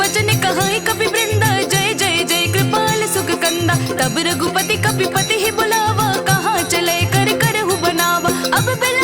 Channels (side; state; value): both; identical; correlation 1.00